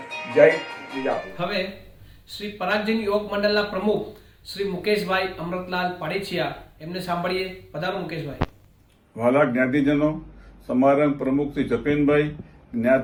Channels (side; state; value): both; identical; correlation 1.00